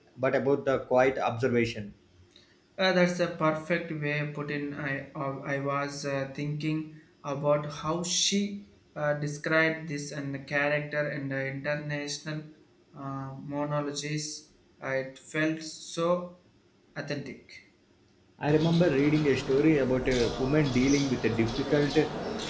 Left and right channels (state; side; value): identical; both; correlation 1.00